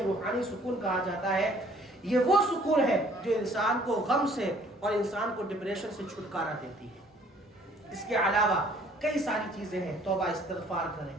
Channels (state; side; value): normal; both; correlation 0.58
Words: سکون کہا جاتا ہے۔ یہ وہ سکون ہے جو انسان کو غم سے اور انسان کو ڈپریشن سے چھٹکارا دیتی ہے۔ اس کے علاوہ کئی ساری چیزیں ہیں، توبہ استغفار کریں،